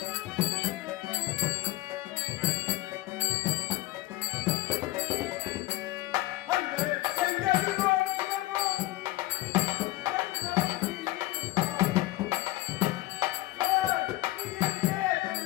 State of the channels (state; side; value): quieter; right; 18.5 dB